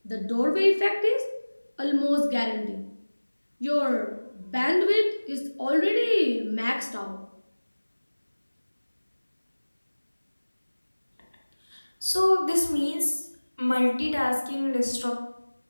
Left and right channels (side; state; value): both; inverted; correlation -1.00